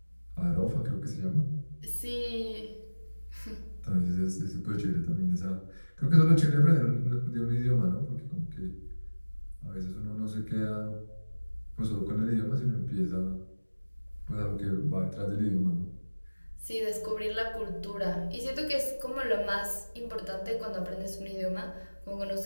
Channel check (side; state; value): both; inverted; correlation -1.00